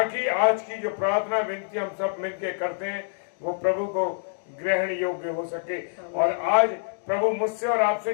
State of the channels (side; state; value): right; silent; digital silence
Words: आज की जो प्रार्थना विनती हम सब मिलकर करते हैं वो प्रभु को ग्रहण योग्य हो सके। और आज प्रभु मुझसे और आपसे